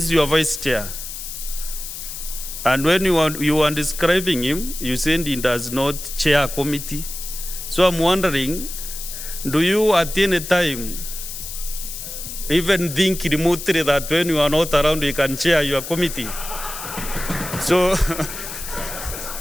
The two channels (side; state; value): left; noise; hiss, 9 dB below the sound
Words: your vice chair. And when you are describing him, you said he does not chair a committee. So I'm wondering, do you at any time even think remotely that when you are not around, you can chair your committee? So,